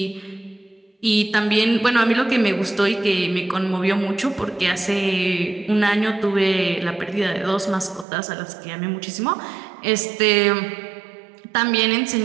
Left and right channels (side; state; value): left; drops out; at 8.1 s